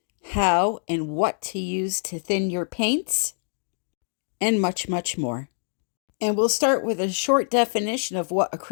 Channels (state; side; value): silent; right; 62 dB below the other